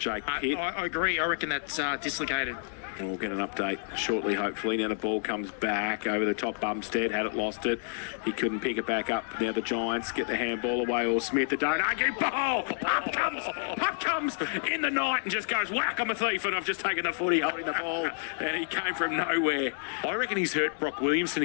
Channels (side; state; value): right; silent; digital silence